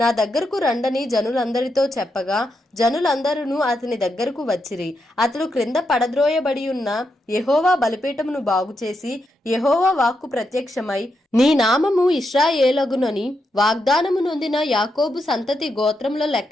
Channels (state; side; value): normal; both; correlation 0.83